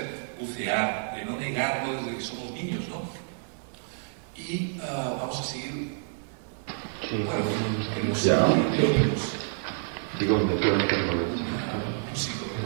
bucear, de no negarlo desde que somos niños, ¿no? Y vamos a seguir. Bueno, digo, me quedo en el momento.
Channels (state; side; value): silent; left; 59 dB below the other